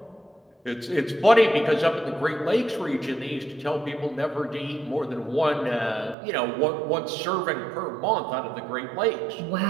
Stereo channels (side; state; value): left; drops out; at 6.2 s